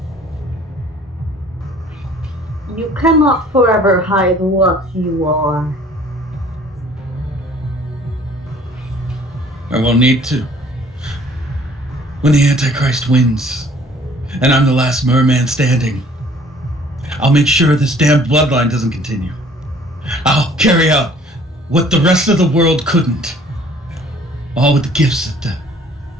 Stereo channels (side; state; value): both; normal; correlation 0.55